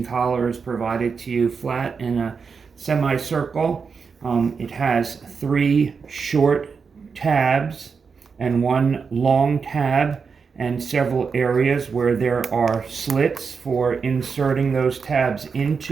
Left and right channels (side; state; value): left; quieter; 5.5 dB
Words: collar is provided to you flat in a semicircle. It has 3 short tabs and 1 long tab, and several areas where there are slits for inserting those tabs